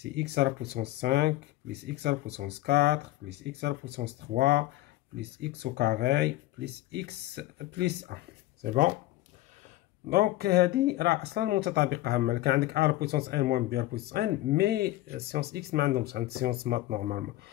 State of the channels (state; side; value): quieter; right; 16.4 dB